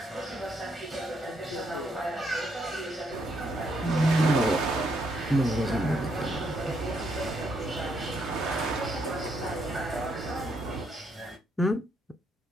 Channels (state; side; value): normal; both; correlation 0.75